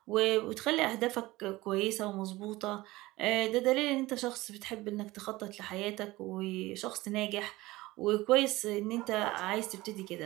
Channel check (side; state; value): left; quieter; 19.3 dB